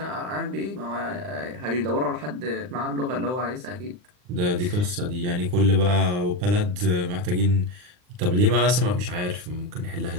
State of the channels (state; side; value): late; left; 39 ms